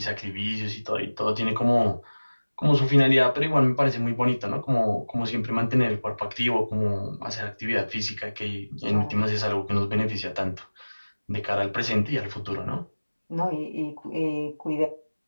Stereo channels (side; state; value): both; inverted; correlation -1.00